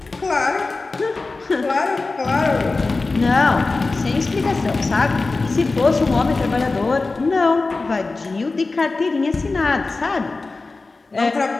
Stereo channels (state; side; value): quieter; right; 3.6 dB